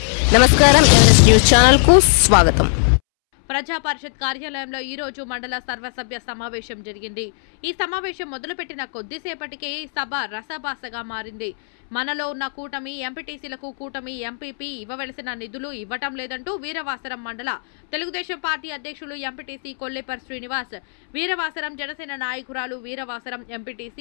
నమస్కారం, Everest news channel కు స్వాగతం. ప్రజా పరిషత్ కార్యాలయంలో ఈ రోజు మండల సర్వసభ్య సమావేశం జరిగింది. ఈ సమావేశం మొదలుపెట్టిన కొద్దిసేపటికే సభ రసభాసగా మారింది. మనలో ఉన్న కూటమి ఎంపీటీసీలకు కూటమి ఎంపీపీ ఇవ్వవలసిన నిధులు ఇవ్వటం లేదంటూ వీరవాసరం మండల తెలుగుదేశం పార్టీ అధ్యక్షులు ఎంపీటీసీ కొల్లేపర్ శ్రీనివాస్, వీరవాసరం జనసేన నాయకురాలు వీరవాసరం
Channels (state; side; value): silent; right; 66 dB below the other